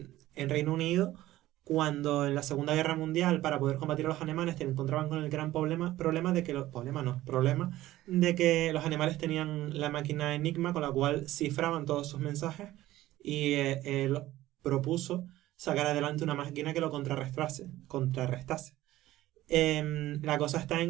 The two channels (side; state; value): left; quieter; 15.6 dB